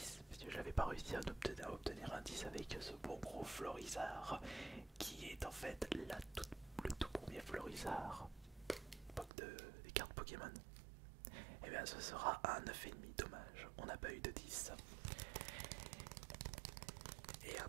parce que je n'avais pas réussi à obtenir un 10 avec ce bon gros Florizard, qui est en fait le tout premier Florizard des cartes Pokémon. Et bien ce sera un 9,5, dommage, on n'a pas eu de 10. Et à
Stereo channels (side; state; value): left; drops out; at 9.3 s